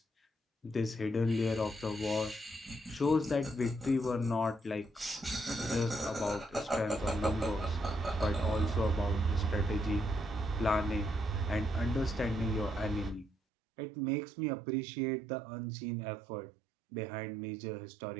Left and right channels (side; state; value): left; drops out; at 13.3 s